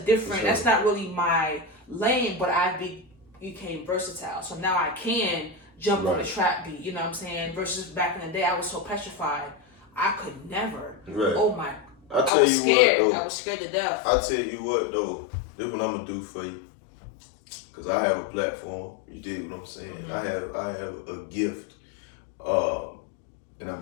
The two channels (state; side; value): drops out; right; at 12.3 s